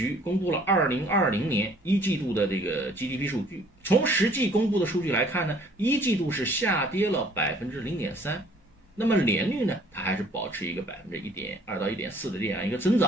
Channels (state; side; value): normal; both; correlation 0.57